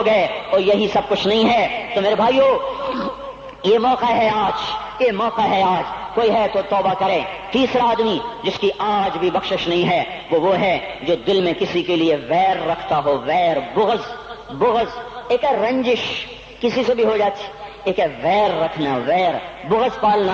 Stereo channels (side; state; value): both; identical; correlation 1.00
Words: گئے، اور یہی سب کچھ نہیں ہے۔ تو میرے بھائیو، یہ موقع ہے آج، یہ موقع ہے آج، کوئی ہے تو توبہ کرے۔ تیسرا آدمی جس کی آج بھی بخشش نہیں ہے وہ ہے جو دل میں کسی کے لیے ویر رکھتا ہو، ویر، بغض، ایک ہے رنجش، کسی سے بھی ہو جاتی، ایک ہے ویر رکھنا، ویر، بغض